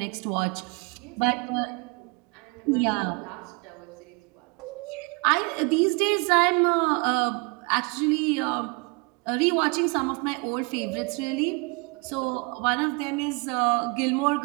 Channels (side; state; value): left; quieter; 30.6 dB